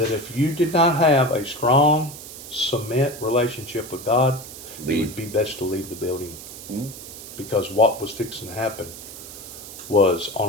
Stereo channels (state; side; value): noise; right; hiss, 13 dB below the sound